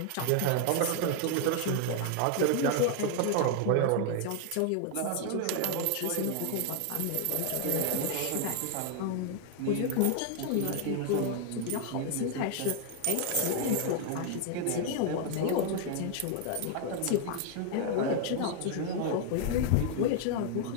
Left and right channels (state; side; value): different; both; correlation 0.00